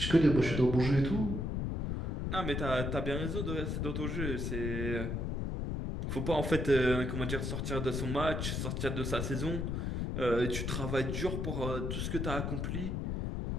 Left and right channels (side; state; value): left; noise; rumble, 1 dB below the sound